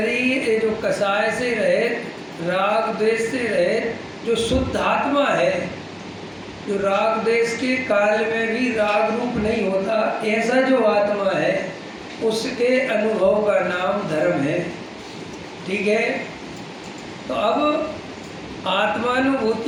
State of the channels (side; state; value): both; identical; correlation 1.00